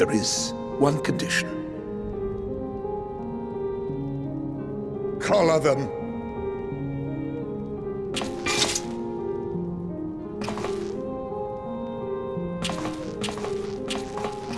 is one condition. Collar them.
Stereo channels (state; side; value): identical; both; correlation 1.00